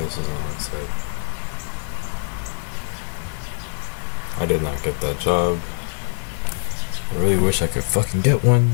is on site. I did not get that job. I really wish I could fucking get one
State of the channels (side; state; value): right; silent; 63 dB below the other